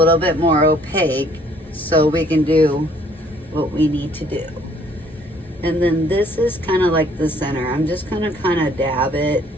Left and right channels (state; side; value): normal; both; correlation 0.61